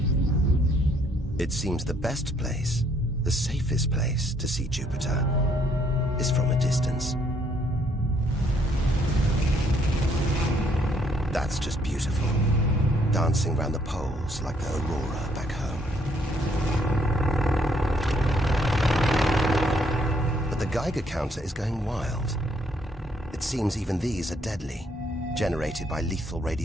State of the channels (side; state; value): both; normal; correlation 0.68